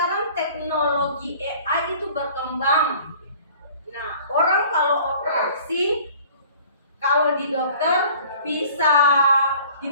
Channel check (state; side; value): inverted; both; correlation -0.50